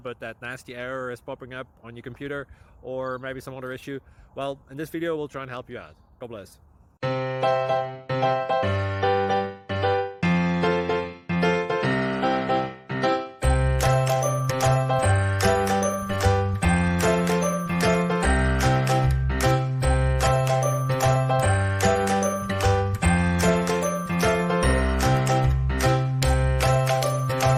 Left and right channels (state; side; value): identical; both; correlation 1.00